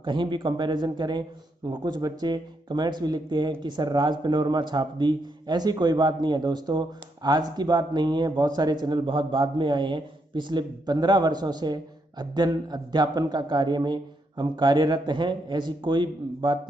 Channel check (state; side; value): normal; both; correlation 0.79